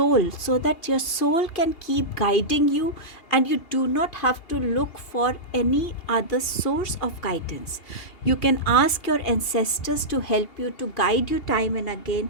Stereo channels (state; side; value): late; right; 2.7 ms